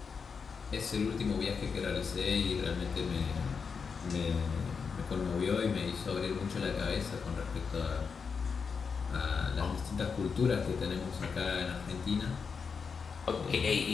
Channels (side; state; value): right; quieter; 5.7 dB